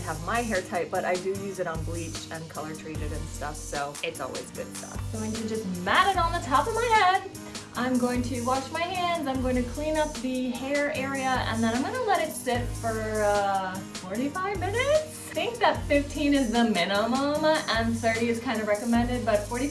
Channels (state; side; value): identical; both; correlation 1.00